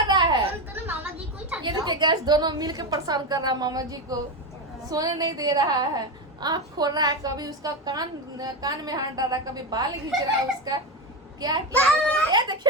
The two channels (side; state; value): both; normal; correlation 0.15